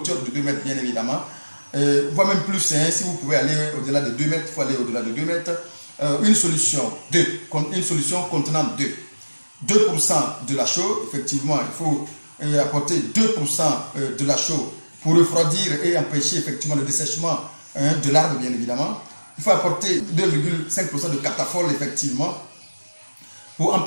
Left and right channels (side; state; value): both; inverted; correlation -1.00